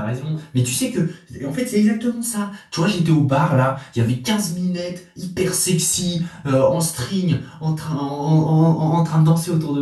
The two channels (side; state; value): both; identical; correlation 1.00